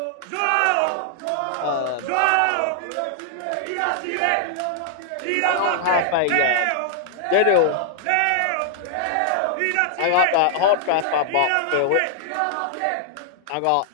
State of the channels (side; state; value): both; different; correlation 0.00